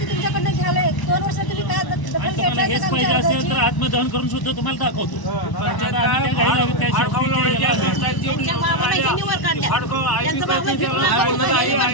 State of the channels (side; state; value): right; late; 1.0 ms